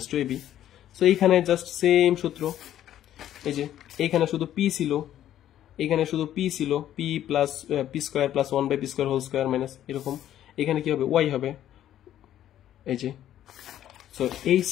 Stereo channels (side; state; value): right; quieter; 11.7 dB